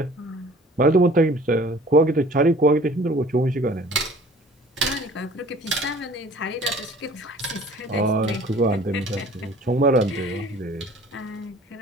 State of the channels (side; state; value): both; normal; correlation 0.50